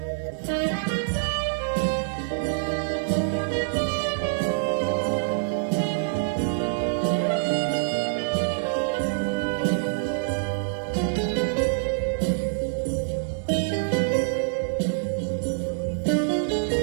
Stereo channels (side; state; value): left; silent; digital silence